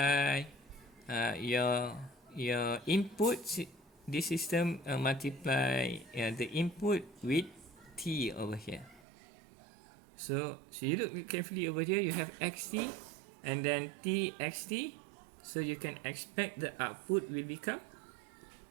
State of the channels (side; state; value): left; drops out; at 9.1 s